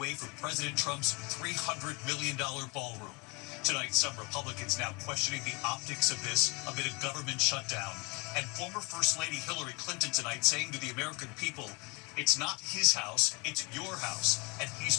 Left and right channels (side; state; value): right; quieter; 29.0 dB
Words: for President Trump's $300 million ballroom. Tonight, some Republicans now questioning the optics of this amid a government shutdown. And former First Lady Hillary Clinton tonight saying to the American people, it's not his house, it's your house, and he's